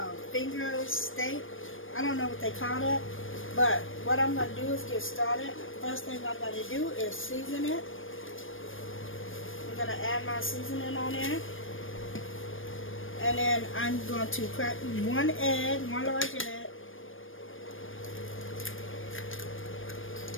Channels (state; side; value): late; right; 0.59 ms